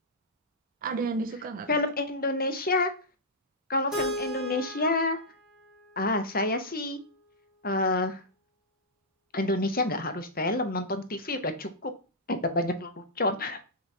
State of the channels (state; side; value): normal; both; correlation -0.11